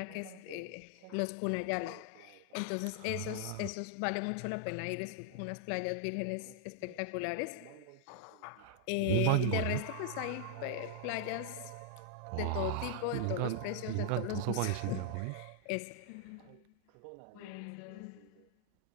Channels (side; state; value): both; different; correlation 0.00